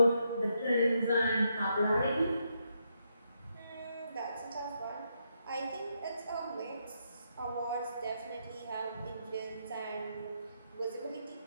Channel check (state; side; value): inverted; both; correlation -0.79